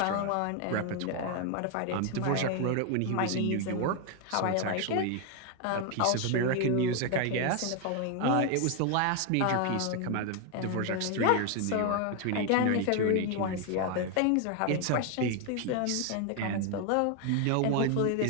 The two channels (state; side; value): different; both; correlation 0.01